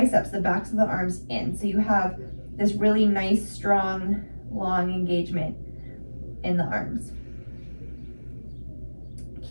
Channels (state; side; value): inverted; both; correlation -1.00